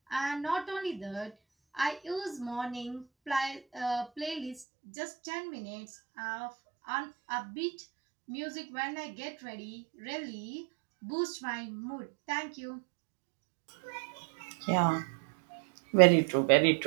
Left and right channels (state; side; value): drops out; left; at 4.7 s